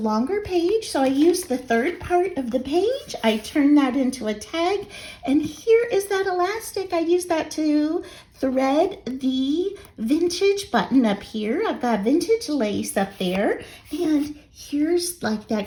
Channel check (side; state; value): both; identical; correlation 1.00